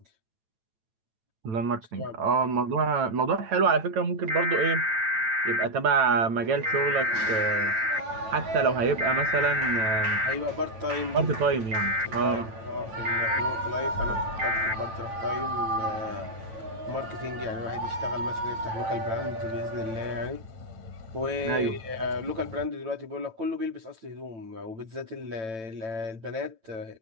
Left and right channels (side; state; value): left; late; 9.0 ms